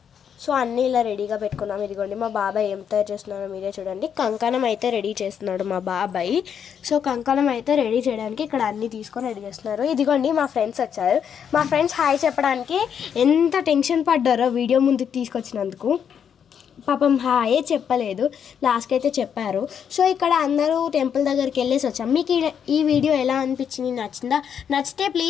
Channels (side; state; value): right; quieter; 7.9 dB